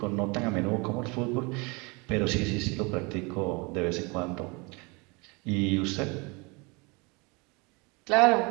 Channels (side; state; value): left; quieter; 28.4 dB